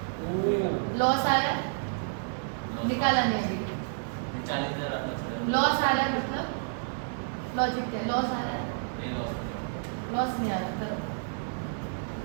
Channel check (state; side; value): silent; left; digital silence